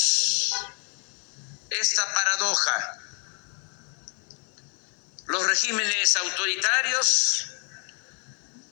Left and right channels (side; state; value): right; quieter; 38.3 dB